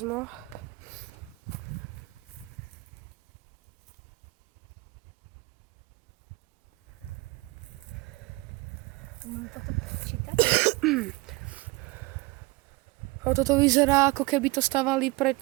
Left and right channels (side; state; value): left; quieter; 23.3 dB